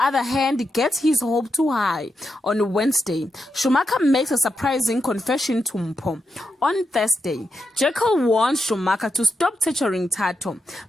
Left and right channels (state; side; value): normal; both; correlation 0.85